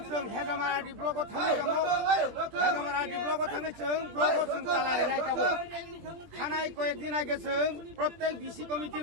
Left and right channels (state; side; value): late; left; 21 ms